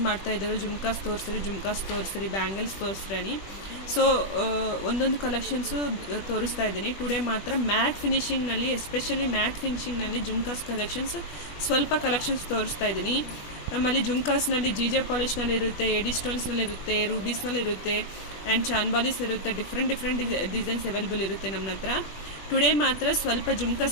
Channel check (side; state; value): right; late; 21 ms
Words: ಮಾಡ್ತಾಯಿದ್ದರು, ಜುಮ್ಕಾಸ್ ತೋರಿಸ್ರಿ, ಬ್ಯಾಂಗಲ್ಸ್ ತೋರಿಸ್ರಿ. ಸೊ ಒಂದೊಂದು ಕಲೆಕ್ಷನ್ಸು ತೋರಿಸ್ತಾ ಇದ್ದೀನಿ. ಟುಡೇ ಮಾತ್ರ ಮ್ಯಾಟ್ ಫಿನಿಷಿಂಗ್ನಲ್ಲಿ, ಎಸ್ಪೆಷಲಿ ಮ್ಯಾಟ್ ಫಿನಿಷಿಂಗ್ನಲ್ಲಿ ಜುಮ್ಕಾಸ್ ಕಲೆಕ್ಷನ್ಸ್ ಸ್ವಲ್ಪ ಕಲೆಕ್ಷನ್ಸ್ ತೋರಿಸ್ತಾ ಇದ್ದೀನಿ. ನಮ್ಮಲ್ಲಿ ಜುಮ್ಕಾಸ್ನಲ್ಲಿ ಜೆ ಪಾಲಿಷ್ನಲ್ಲಿ ಇರುತ್ತೆ, ಎಡಿ ಸ್ಟೋನ್ಸ್ನಲ್ಲಿರುತ್ತೆ, ರೂಬೀಸ್ನಲ್ಲಿರುತ್ತೆ ಆ್ಯಂಡ್ ಚಾನ್ಬಾಲೀಸ್ ಇರುತ್ತೆ. ಡಿಫ್ರೆಂಟ್ ಡಿಸೈನ್ಸ್ ಅವೈಲೇಬಲ್ ಇರುತ್ತೆ ನಮ್ಮ ಹತ್ರ. ಟುಡೇ ಮಾತ್ರ ಸ್ವಲ್ಪ